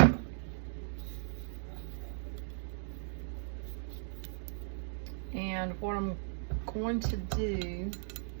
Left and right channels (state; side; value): silent; left; digital silence